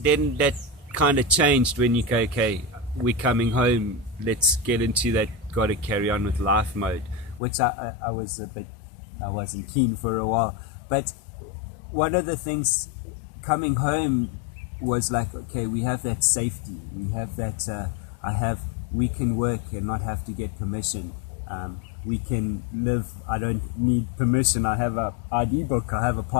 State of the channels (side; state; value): right; drops out; at 7.4 s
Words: kind of changed when you go, okay, we're coming home, let's get into that gotta carry on with life mode, which I wasn't keen for a while. But one of the things coming home was like, okay, we have that safety, we have that we can work and not have to get permission. We can live, I don't need permission, I have a ID book, I have a